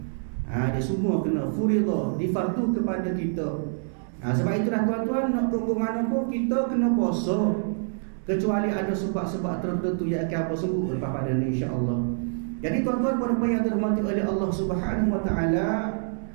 Dia semua kena furidah, difardu kepada kita. Sebab itulah tuan-tuan, nak ke mana pun kita kena puasa, kecuali ada sebab-sebab tertentu yang akan apa sebut lepas pada ni, insya-Allah. Jadi tuan-tuan puan-puan yang dirahmati oleh Allah Subhanahu wa taala,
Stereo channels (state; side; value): silent; left; digital silence